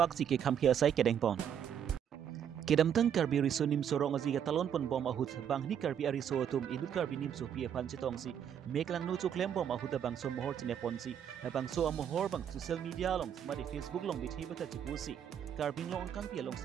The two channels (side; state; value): left; quieter; 8.8 dB